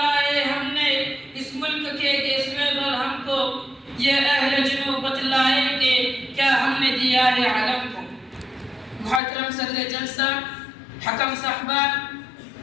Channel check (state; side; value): drops out; right; at 9.2 s